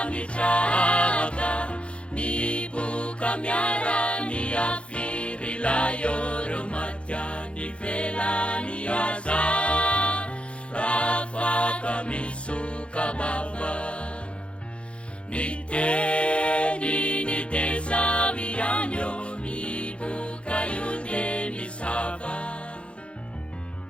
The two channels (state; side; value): late; right; 0.059 ms